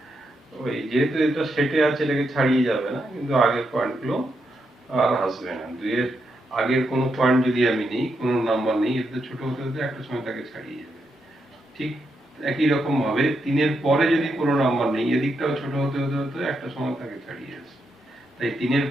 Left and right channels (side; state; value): both; normal; correlation 0.82